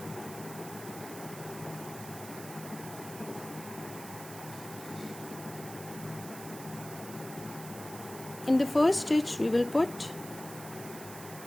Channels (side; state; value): right; noise; hiss, 13 dB below the sound